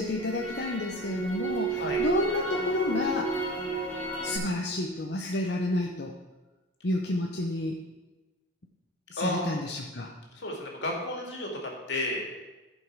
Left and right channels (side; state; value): both; normal; correlation 0.36